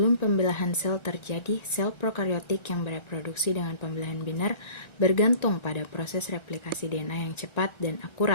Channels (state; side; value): late; right; 1.3 ms